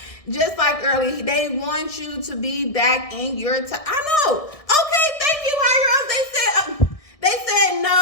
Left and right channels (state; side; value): late; right; 1.6 ms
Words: Just like earlier, they want you to be back in your time. I know. Okay, thank you, higher ups. They said